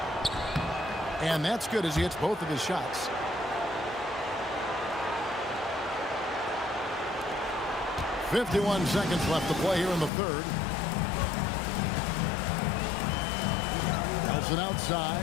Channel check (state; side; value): drops out; right; at 10.1 s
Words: And that's good as he hits both of his shots. .51 seconds left to play here in the third. Nelson